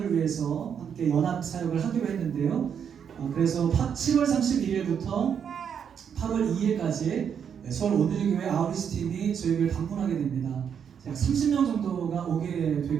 위해서 함께 연합 사역을 하기로 했는데요. 그래서 7월 31일부터 8월 2일까지 서울 온누리 교회 아우리스 팀이 저희 교회를 방문하게 됩니다. 약 30명 정도가 오게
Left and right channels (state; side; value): quieter; left; 7.7 dB